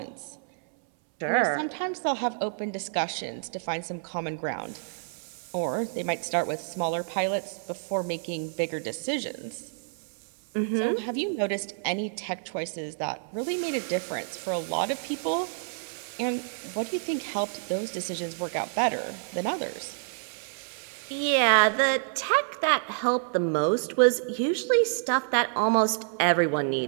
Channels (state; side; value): silent; left; 59 dB below the other